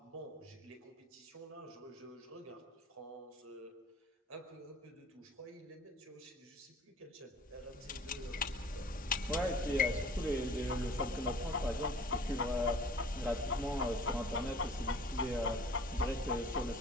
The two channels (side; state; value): both; normal; correlation 0.49